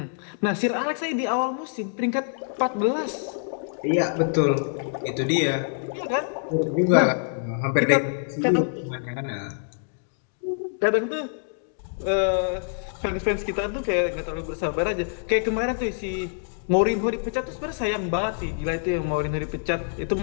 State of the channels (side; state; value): right; silent; digital silence